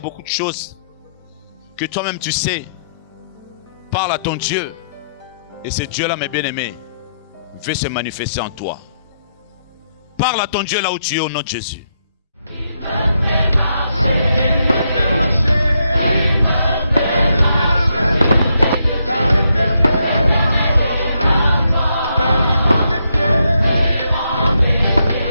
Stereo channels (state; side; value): inverted; both; correlation -0.79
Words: de choses que toi-même tu sais. Parle à ton Dieu. Et ce Dieu-là, mes bien-aimés, veut se manifester en toi. Parle à ton Dieu là où tu es au nom de Jésus.